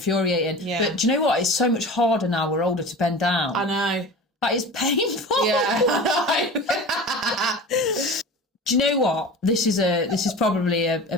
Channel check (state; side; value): normal; both; correlation 0.35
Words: Yeah. But do you know what? It's so much harder now we're older to bend down. I know. That is painful. Yeah, I know. Do you know what? This is probably a